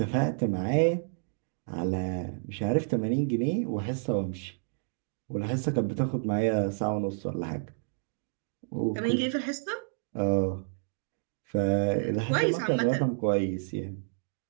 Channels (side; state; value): left; silent; digital silence